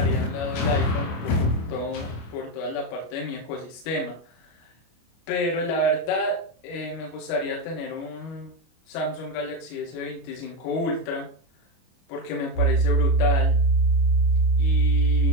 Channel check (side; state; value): right; late; 25 ms